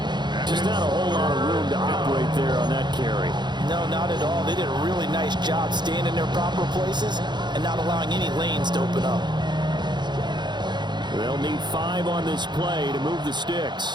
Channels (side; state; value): left; late; 0.21 ms